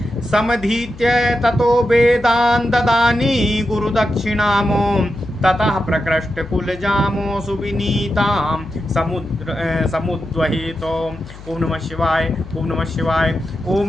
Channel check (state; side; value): noise; left; hum, 16 dB below the sound